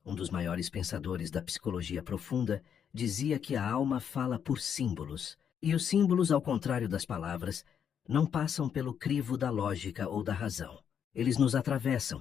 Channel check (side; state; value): right; quieter; 8.1 dB